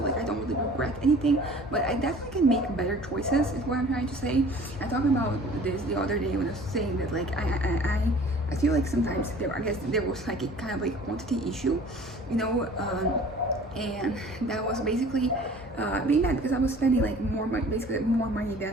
I don't really regret anything, but I definitely can make better choices. Is what I'm trying to say. I talked about this the other day when I was saying that like I feel like sometimes I guess there was like a kind of like quantity issue, you know, and that was basically being that because I was spending like more money, basically more money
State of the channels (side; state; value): both; normal; correlation 0.48